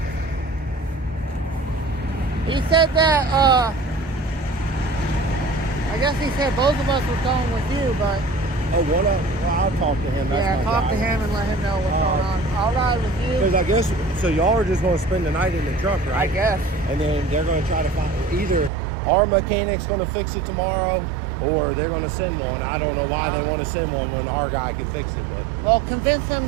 He said that, I guess he said both of us were going with you, but Oh, one of them. Well, I'll talk to him. That's yeah, my talk guy. to him and let him know what's going on. I'll ride with you. Because I guess, so y'all are just going to spend the night in the truck, right? I guess. And then they're going to try to find, either our mechanic's going to fix it tomorrow, or they're going to send one. I don't know why they want to send one when our guy can fix it. But Well, convince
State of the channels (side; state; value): left; drops out; at 18.7 s